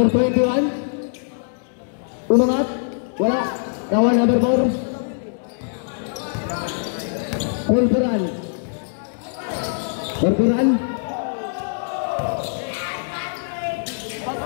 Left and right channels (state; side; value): silent; right; digital silence